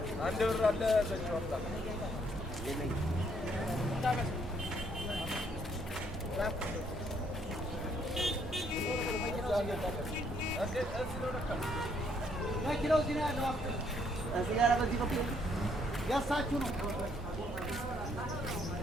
አንድ ብር አለ በዚህ ወጣ መኪናው እዚህ ነው ያለው። ሲጋራ በዚህ በኩል ያሳችሁ ነው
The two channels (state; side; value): normal; both; correlation 0.69